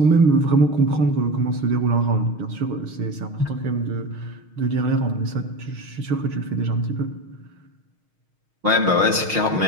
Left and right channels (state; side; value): late; left; 6.4 ms